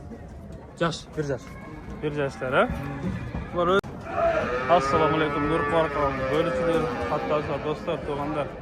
yaş, 1 yaş. 1 yaşlar ha? Bunlar Assalamu alaikum. Nur Qarqam. Bölüçüler, hatta dostlar, to'g'anlar.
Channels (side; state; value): both; identical; correlation 1.00